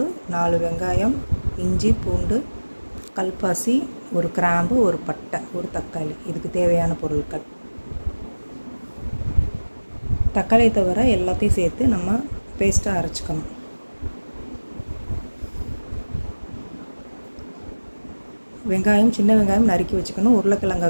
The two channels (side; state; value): both; inverted; correlation -1.00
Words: 4 வெங்காயம், இஞ்சி, பூண்டு, கல்பாசி, ஒரு கிராம்பு, ஒரு பட்டை, ஒரு தக்காளி. இதுக்கு தேவையான பொருட்கள். தக்காளியை தவிர எல்லாத்தையும் சேர்த்து நம்ம பேஸ்ட்டாக அரைச்சிக்கணும். வெங்காயம், சின்ன வெங்காயம் நறுக்கி வச்சுக்கணும். உருளைக்கிழங்கை